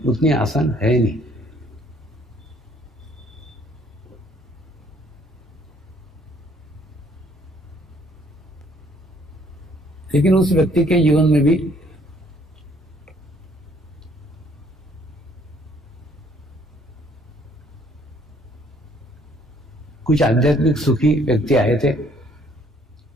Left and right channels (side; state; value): both; normal; correlation 0.62